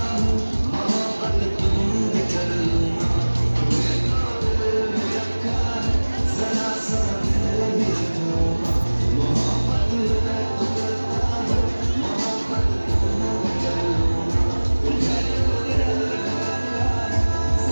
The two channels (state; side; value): inverted; both; correlation -1.00